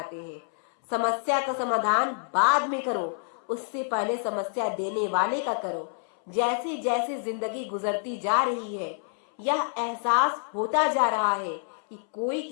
हैं। समस्या का समाधान बाद में करो, उससे पहले समस्या देने वाले का करो। जैसे जैसे जिंदगी गुजरती जा रही है, यह एहसास होता जा रहा है कि कोई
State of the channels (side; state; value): right; silent; 60 dB below the other